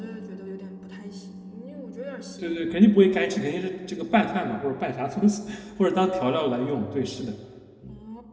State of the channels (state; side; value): identical; both; correlation 1.00